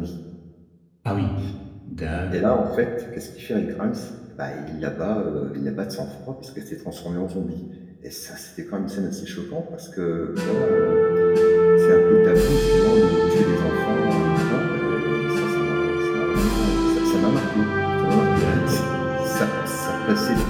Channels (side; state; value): both; identical; correlation 1.00